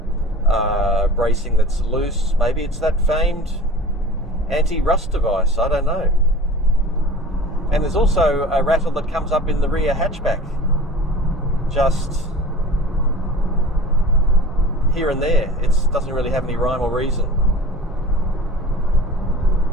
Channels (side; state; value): both; normal; correlation 0.40